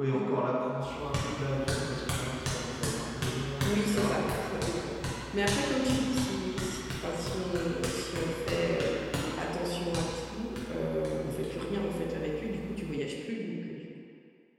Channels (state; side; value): identical; both; correlation 1.00